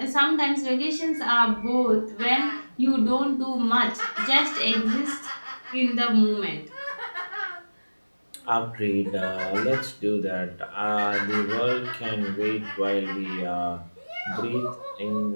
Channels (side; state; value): both; inverted; correlation -1.00